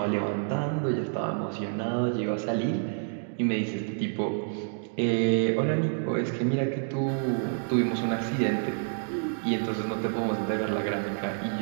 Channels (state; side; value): silent; left; digital silence